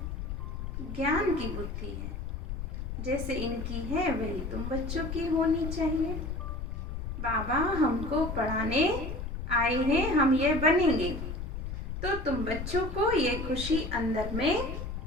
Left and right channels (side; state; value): left; noise; rumble, 5 dB below the sound